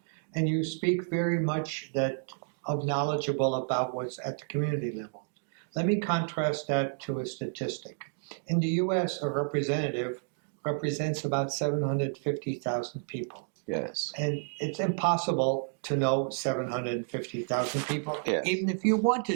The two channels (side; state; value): left; silent; digital silence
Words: And you speak very much knowledgeable about what's at the community level. Let me contrast that to a statistic. In the US, a representative represents about 750,000 people. Yes. And it's impossible to know 750,000 people, yes. even if you